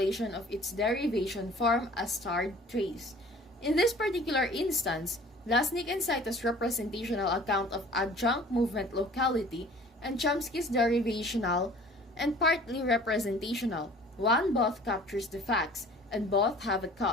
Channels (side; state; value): both; normal; correlation 0.48